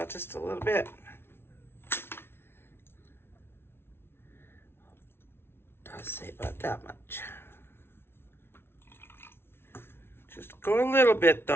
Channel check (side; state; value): right; late; 0.12 ms